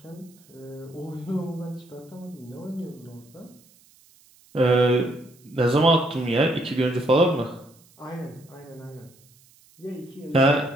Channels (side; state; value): right; noise; hiss, 29 dB below the sound